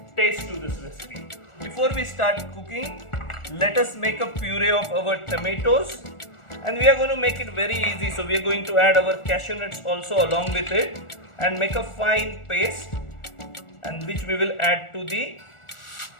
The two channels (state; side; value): late; right; 1.4 ms